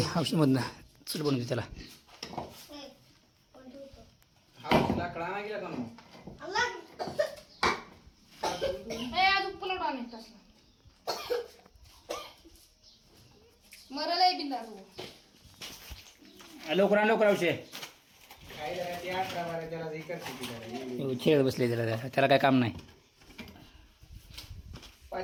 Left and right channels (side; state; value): both; identical; correlation 1.00